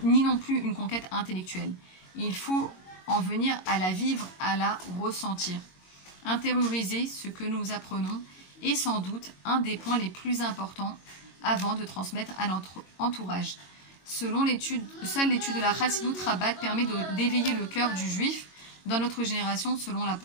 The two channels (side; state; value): right; late; 22 ms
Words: ni non plus une conquête intellectuelle. Il faut en venir à la vivre, à la ressentir. Intérioriser ce que nous apprenons est sans doute un des points les plus importants avant de transmettre à notre entourage. Seule l'étude de la Chassidut Rabat permet d'éveiller le cœur du juif dans notre génération, selon